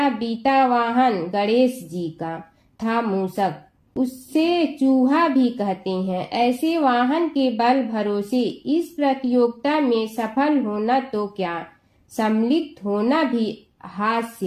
बीता वाहन गणेश जी का था मूषक, उससे चूहा भी कहते हैं। ऐसे वाहन के बल भरोसे इस प्रतियोगिता में सफल होना तो क्या, सम्मिलित होना भी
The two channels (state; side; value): identical; both; correlation 1.00